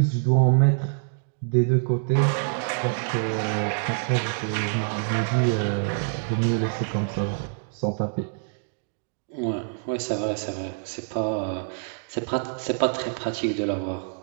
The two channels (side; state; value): left; silent; digital silence